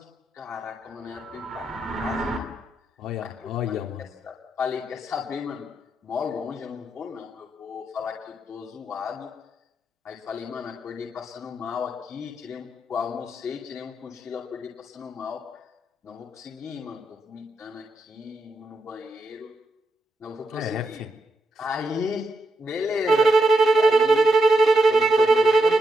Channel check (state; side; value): normal; both; correlation 0.82